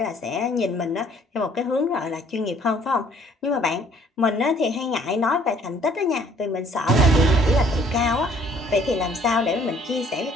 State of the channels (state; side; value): normal; both; correlation 0.59